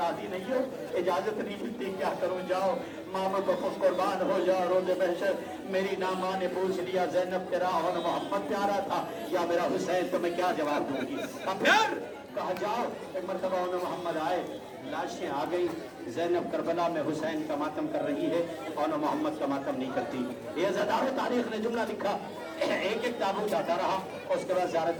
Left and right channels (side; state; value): both; identical; correlation 1.00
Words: नहीं हो, इजाजत नहीं मिलती, क्या करूँ, जाओ मामा को कुर्बान हो जाओ, रोज़े महशर मेरी ना माँ ने पूछ लिया ज़ैनब तेरा और मोहम्मद प्यारा था या मेरा हुसैन, तो मैं क्या जवाब दूंगी। अब फिर कहा जाओ। एक मरतबा उन्हें मोहम्मद आए, लाशें आ गई, ज़ैनब करबला में हुसैन का मातम कर रही है और मोहम्मद का मातम नहीं करती। ये ज़दार तारीख ने जुमला लिखा, एक एक ताबूत आता रहा और उसके बाद ज़ियारत